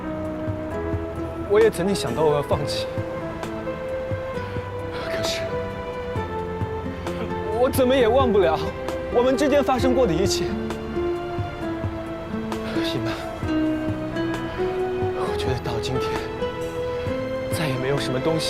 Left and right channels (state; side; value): identical; both; correlation 1.00